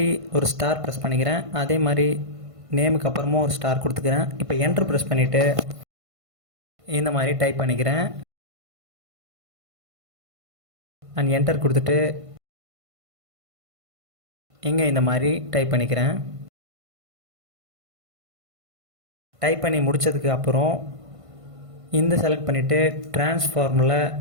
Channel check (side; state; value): left; late; 1.5 ms